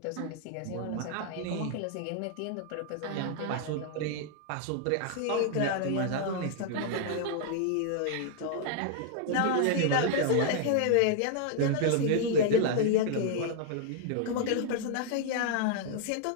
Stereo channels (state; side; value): different; both; correlation 0.00